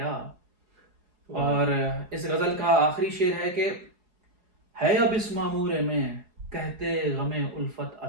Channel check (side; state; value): left; late; 4.8 ms